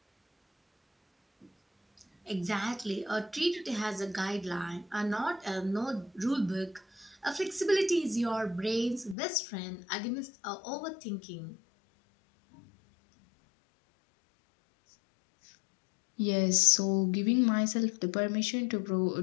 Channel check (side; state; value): right; drops out; at 9.2 s